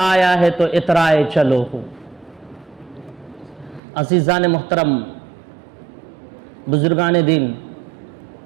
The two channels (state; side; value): drops out; left; at 3.8 s